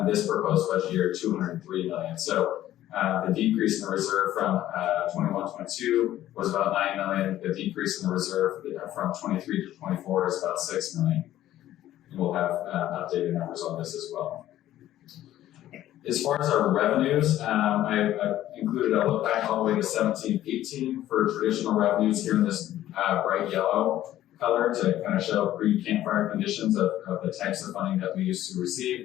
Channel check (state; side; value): quieter; right; 13.3 dB